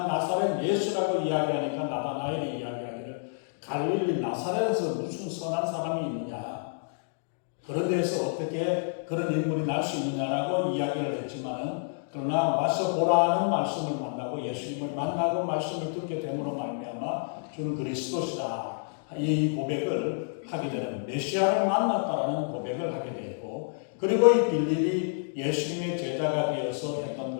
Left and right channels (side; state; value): right; silent; digital silence